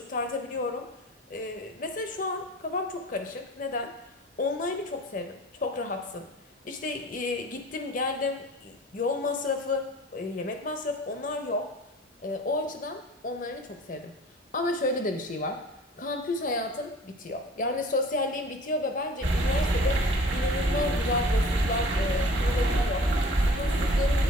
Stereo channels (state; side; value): normal; both; correlation 0.45